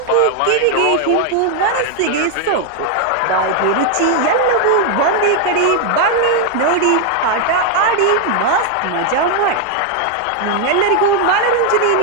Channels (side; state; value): both; different; correlation 0.00